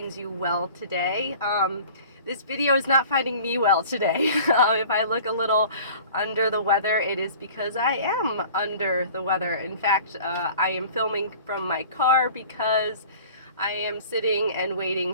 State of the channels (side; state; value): both; inverted; correlation -0.45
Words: you well today. This video is not finding me well today. If I look a little under the weather, it is because I am under the weather. In fact, I am filming from my car because I am sitting and waiting